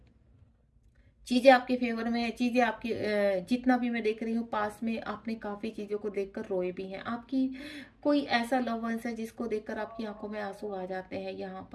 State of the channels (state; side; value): identical; both; correlation 1.00